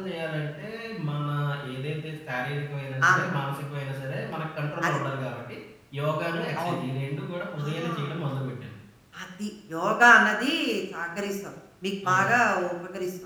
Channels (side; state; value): both; identical; correlation 1.00